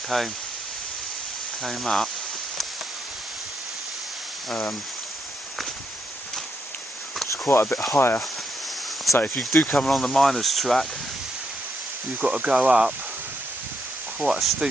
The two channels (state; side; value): normal; both; correlation 0.78